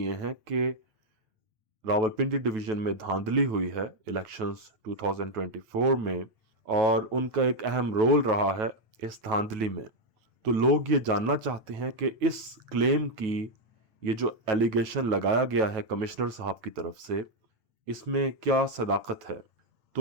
हैं कि रावलपिंडी डिवीज़न में धांधली हुई है इलेक्शंस 2024 में और उनका एक अहम रोल रहा है इस धांधली में। तो लोग ये जानना चाहते हैं कि इस क्लेम की, ये जो एलिगेशन लगाया गया है कमिश्नर साहब की तरफ से, इसमें क्या सदाकत है।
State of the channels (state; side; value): late; left; 9.2 ms